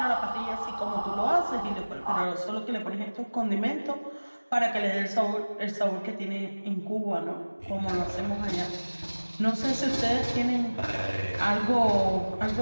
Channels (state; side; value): inverted; both; correlation -1.00